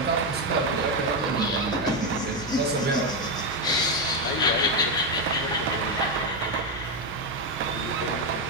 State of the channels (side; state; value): both; normal; correlation 0.07